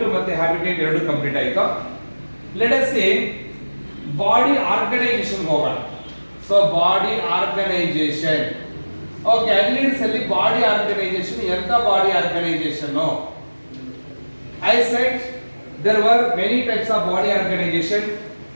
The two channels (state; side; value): inverted; both; correlation -1.00